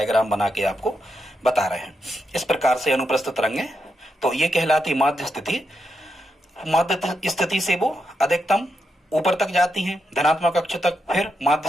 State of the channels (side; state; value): both; normal; correlation 0.84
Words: बना के आपको बता रहे हैं, इस प्रकार से अनुप्रस्थ तरंगें। तो ये कहलाती माध्य स्थिति। माध्य स्थिति से वो अधिकतम ऊपर तक जाती हैं, धनात्मक अक्ष तक, फिर माध्य